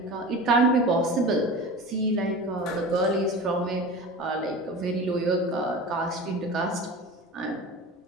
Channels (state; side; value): normal; both; correlation 0.33